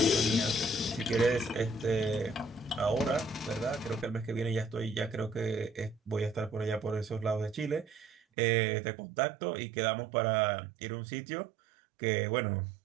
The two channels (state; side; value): drops out; left; at 8.2 s